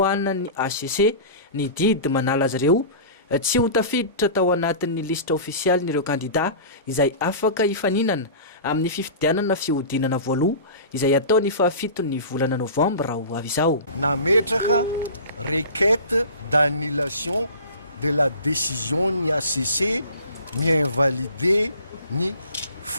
ny ACC ny didy manala azy ireo tsy ho tafiditra tao anatin'ny lisitra ofisialy n'ireo kandida izay afaka hifaninana amin'ny fifidianana fihodinana voaloha izay ataony fahafitony volana novambra ho avy izao. Nametraka requête d'annulation de la décision ni ACC mi-invalider ni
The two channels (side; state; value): both; inverted; correlation -0.37